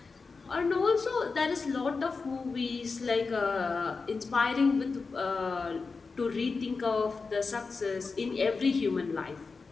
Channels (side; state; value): right; quieter; 4.4 dB